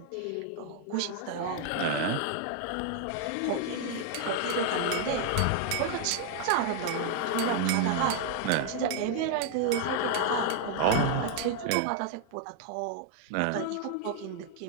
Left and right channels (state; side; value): different; both; correlation 0.00